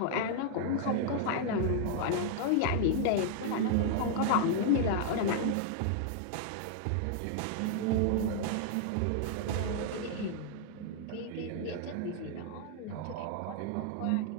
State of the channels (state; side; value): different; both; correlation 0.00